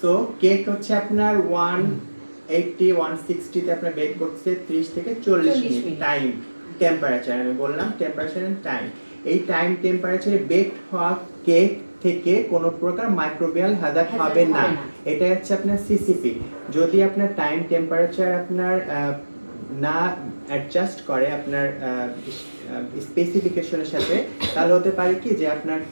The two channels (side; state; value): both; inverted; correlation -1.00